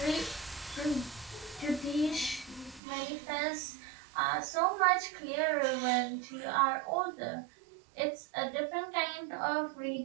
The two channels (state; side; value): drops out; left; at 2.8 s